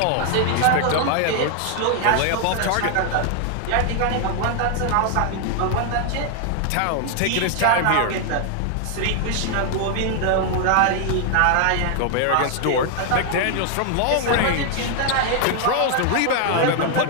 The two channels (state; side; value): different; both; correlation 0.00